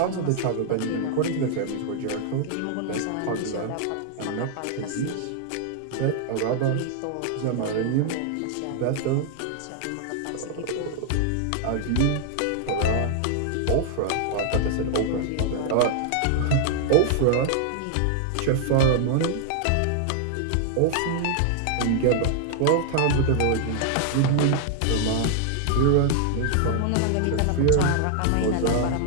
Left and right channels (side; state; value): both; different; correlation 0.00